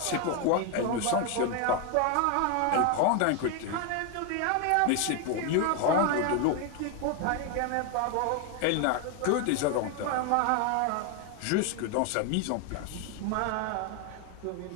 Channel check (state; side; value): different; both; correlation 0.01